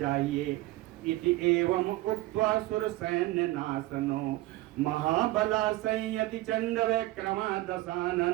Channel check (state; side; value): quieter; left; 18.2 dB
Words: इति एवं उक्त्वा सुर सैन्य नाशनो महाबला संयति चंड विक्रमा